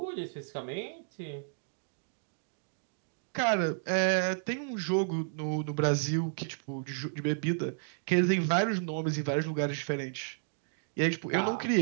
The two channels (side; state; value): left; silent; digital silence